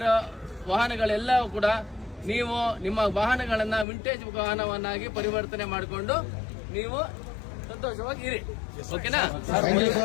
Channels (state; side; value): drops out; right; at 3.9 s